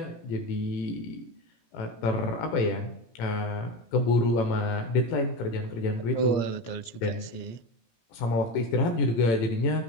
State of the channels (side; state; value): right; late; 17 ms